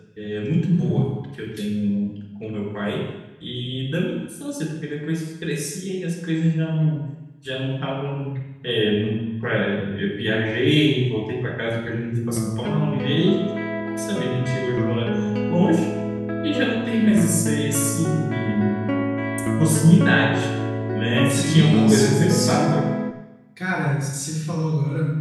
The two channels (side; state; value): both; identical; correlation 1.00